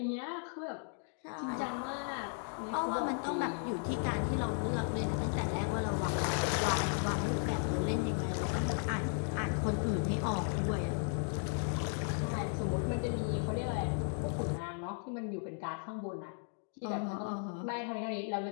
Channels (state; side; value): silent; right; 54 dB below the other